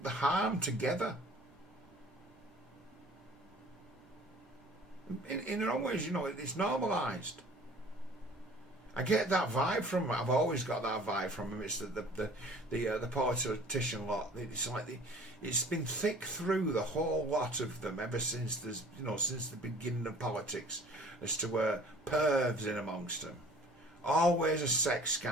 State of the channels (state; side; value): normal; both; correlation 0.49